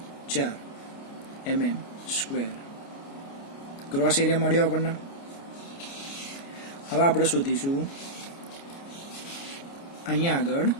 mm સ્ક્વેર. ગ્રોસ એરિયા મળ્યો આપણને. હવે આપણે શોધીશું અહીંયા આગળ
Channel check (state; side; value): late; right; 29 ms